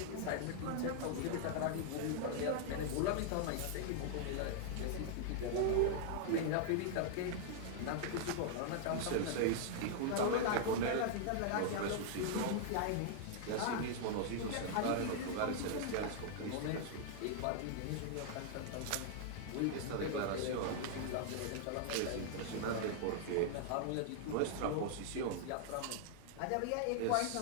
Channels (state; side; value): different; both; correlation -0.01